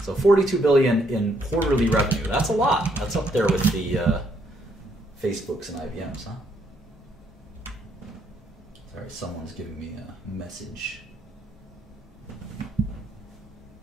So $42 billion in quarterly revenue. That's a lot. That's up there with the Facebooks and IBMs, huh? Sorry, someone's giving me a message.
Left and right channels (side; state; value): both; normal; correlation 0.72